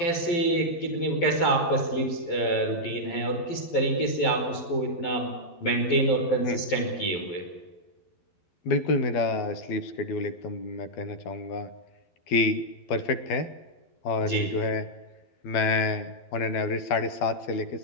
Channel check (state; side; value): late; right; 12 ms